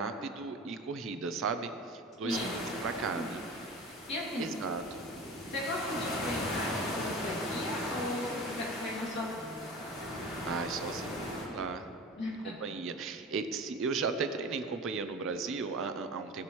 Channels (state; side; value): normal; both; correlation 0.35